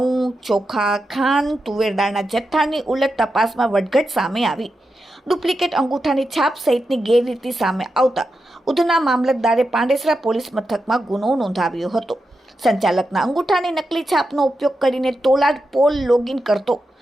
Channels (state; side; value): normal; both; correlation 0.88